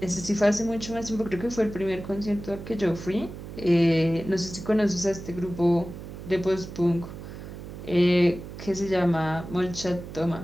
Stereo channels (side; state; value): right; noise; hum, 11 dB below the sound